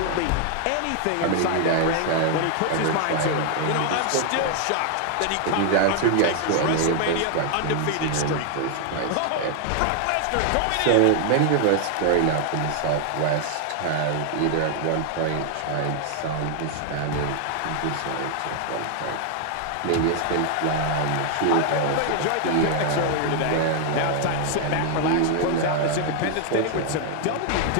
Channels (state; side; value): different; both; correlation 0.00